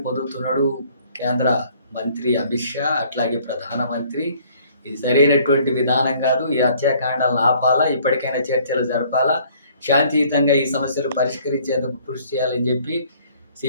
పొందుతున్నాడు కేంద్ర మంత్రి అమిత్ షా, అట్లాగే ప్రధానమంత్రి. ఇది సరైనటువంటి విధానం కాదు. ఈ హత్యాకాండాలను ఆపాలా, ఇప్పటికైనా చర్చలు జరపాలా, శాంతియుతంగా ఈ సమస్యలు పరిష్కరించేందుకు కృషి చేయాలని చెప్పి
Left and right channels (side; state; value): both; inverted; correlation -0.59